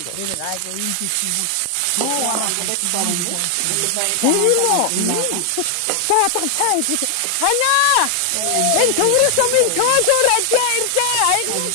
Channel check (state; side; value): different; both; correlation 0.00